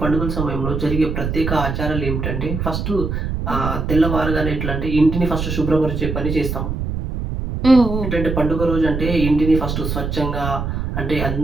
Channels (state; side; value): noise; right; rumble, 3 dB below the sound